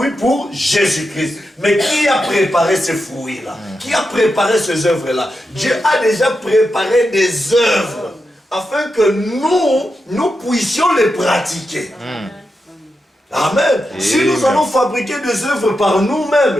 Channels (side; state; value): both; normal; correlation 0.88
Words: pour Jésus-Christ. Mais qui a préparé ces fruits-là? Qui a préparé ces œuvres-là? Dieu a déjà préparé des œuvres afin que nous puissions les pratiquer. Amen. Si nous allons fabriquer des œuvres par